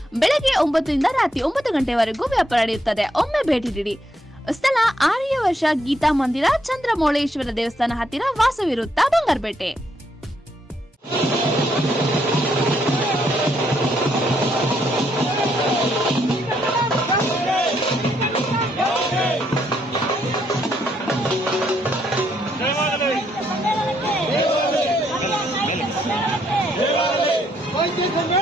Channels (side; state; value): both; normal; correlation 0.74